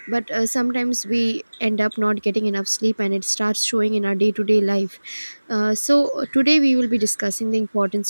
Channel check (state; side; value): inverted; both; correlation -1.00